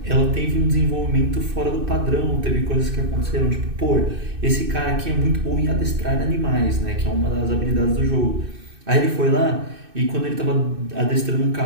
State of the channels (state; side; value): late; left; 2.6 ms